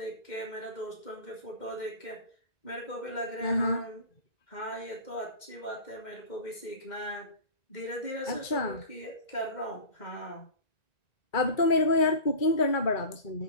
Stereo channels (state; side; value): late; right; 1.9 ms